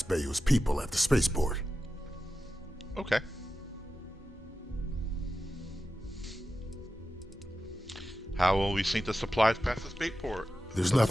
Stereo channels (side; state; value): both; normal; correlation 0.92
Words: Bayou's people at the spaceport. Okay. How will we sneak the supplies past the spaceport? There's